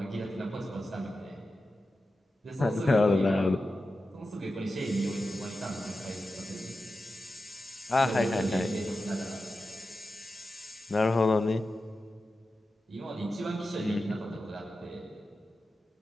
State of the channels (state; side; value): normal; both; correlation 0.92